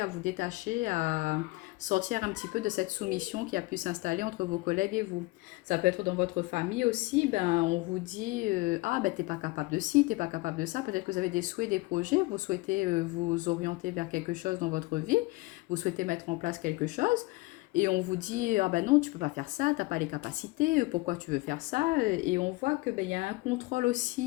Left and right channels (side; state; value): right; quieter; 22.7 dB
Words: vous détacher, à sortir un petit peu de cette soumission qui a pu s'installer entre vos collègues et vous. Ça peut être dans votre famille aussi, on vous dit, t'es pas capable de ci, t'es pas capable de ça. Peut-être que vous avez des souhaits, des projets, vous souhaitez vous orienter vers quelque chose dans votre vie, vous souhaitez mettre en place quelque chose, et on vous dit, non, tu peux pas faire ça, t'as pas les capacités, pourquoi tu veux faire ça? Et on voit que il y a un contrôle